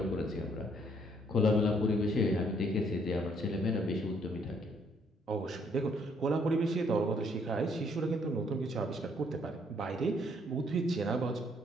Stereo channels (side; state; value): both; normal; correlation 0.67